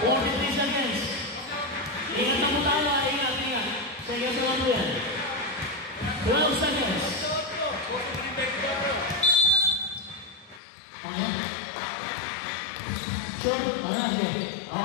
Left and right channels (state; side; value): drops out; right; at 10.6 s